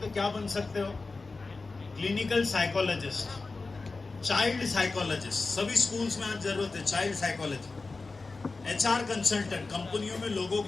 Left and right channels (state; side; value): quieter; right; 3.8 dB